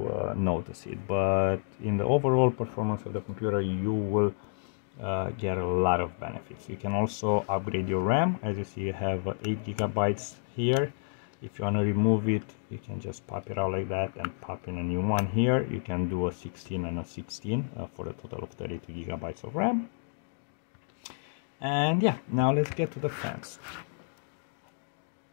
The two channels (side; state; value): right; silent; digital silence